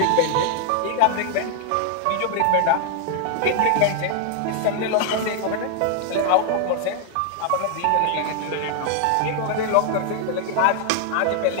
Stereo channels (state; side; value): different; both; correlation 0.00